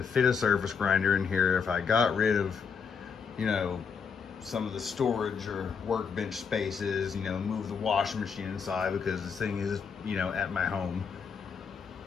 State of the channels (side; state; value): right; quieter; 6.1 dB